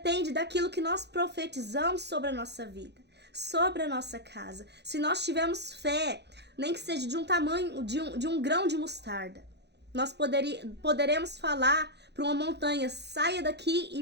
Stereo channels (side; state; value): left; late; 0.49 ms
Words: daquilo que nós profetizamos sobre a nossa vida, sobre a nossa casa. Se nós tivermos fé, nem que seja de um tamanho, de um grão de mostarda, nós poderemos falar para uma montanha: saia daqui